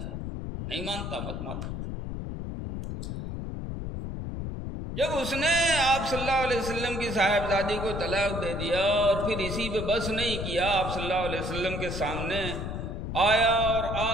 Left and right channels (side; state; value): left; noise; rumble, 5 dB below the sound